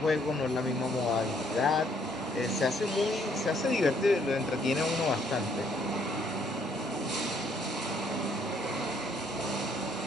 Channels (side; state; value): both; normal; correlation 0.66